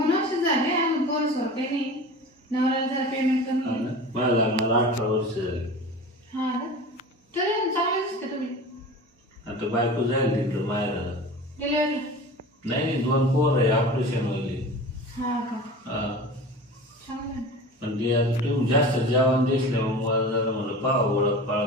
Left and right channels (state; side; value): normal; both; correlation 0.35